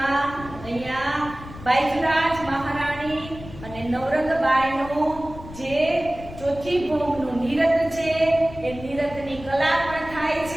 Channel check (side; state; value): left; noise; rumble, 15 dB below the sound